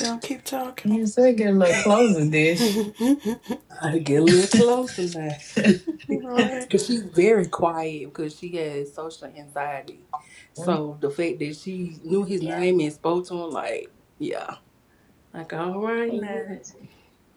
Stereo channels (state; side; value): identical; both; correlation 1.00